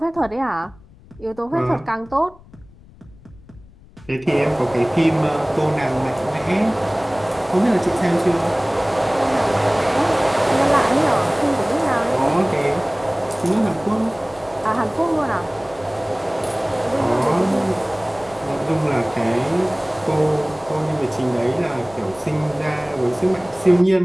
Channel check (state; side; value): noise; left; rumble, 24 dB below the sound